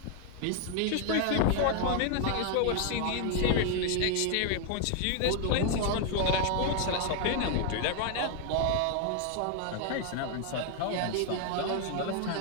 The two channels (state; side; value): different; both; correlation 0.00